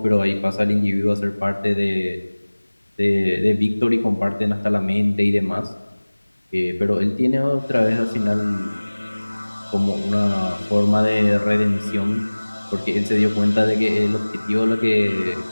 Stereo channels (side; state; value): both; inverted; correlation -1.00